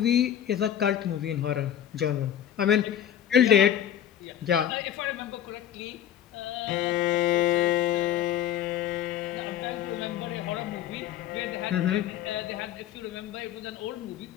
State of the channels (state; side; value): quieter; right; 10.5 dB